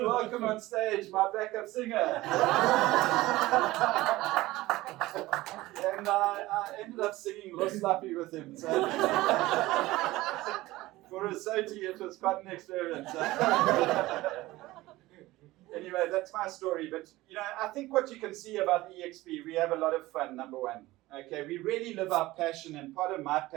welcome on stage my backup singer." And I ended up singing Los Lapi with him. So for a Soti, it was quite an experience. Anyway, that's my story. But you know, I think what you can see about EXP, we have a lot of fun, number one. Okay, we really live our passion, and part of my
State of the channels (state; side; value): quieter; left; 18.3 dB